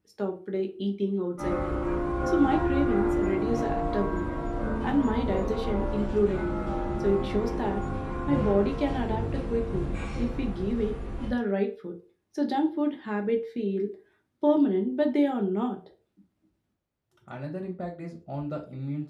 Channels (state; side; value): identical; both; correlation 1.00